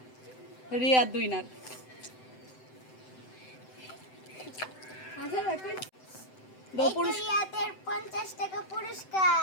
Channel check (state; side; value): late; right; 7.8 ms